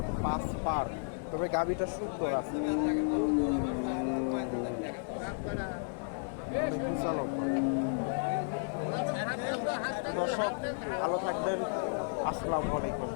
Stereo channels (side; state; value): right; silent; digital silence